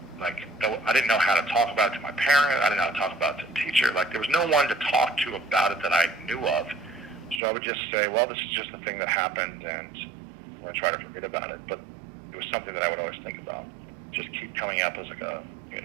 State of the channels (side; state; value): left; drops out; at 7.4 s